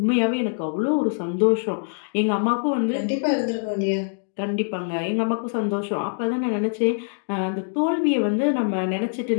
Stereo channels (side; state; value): right; silent; digital silence